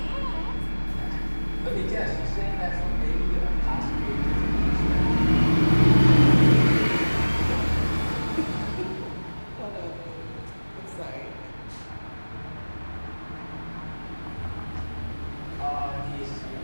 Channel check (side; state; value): both; inverted; correlation -1.00